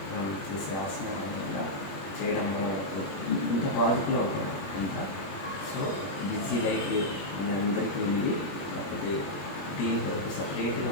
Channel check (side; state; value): right; late; 21 ms